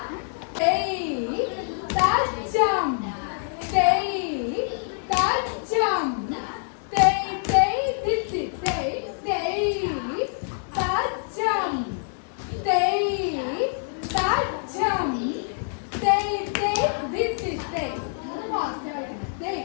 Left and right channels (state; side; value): silent; right; digital silence